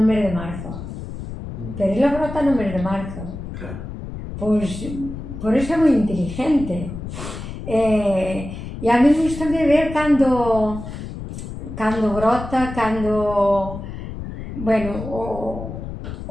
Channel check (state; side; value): noise; left; rumble, 9 dB below the sound